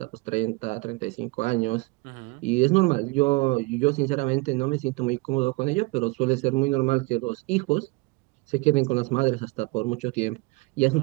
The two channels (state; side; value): quieter; left; 25.7 dB